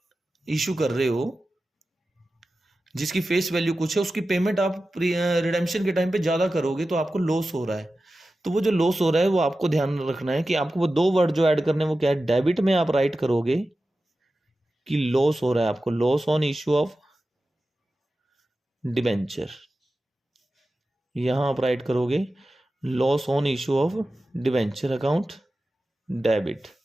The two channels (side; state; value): both; normal; correlation 0.94